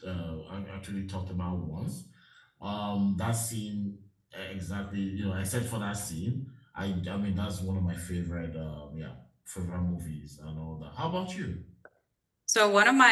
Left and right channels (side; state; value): both; identical; correlation 1.00